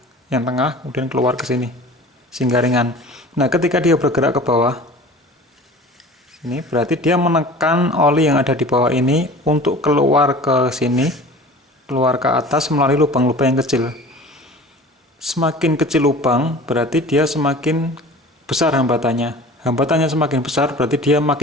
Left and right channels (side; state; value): both; normal; correlation 0.41